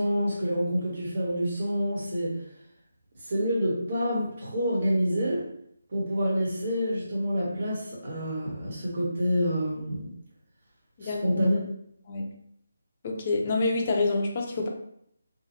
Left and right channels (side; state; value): both; inverted; correlation -0.86